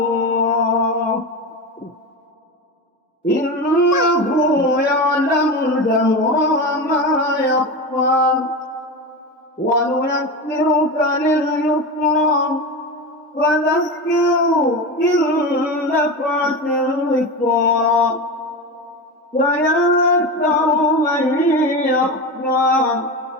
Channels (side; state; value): both; normal; correlation 0.22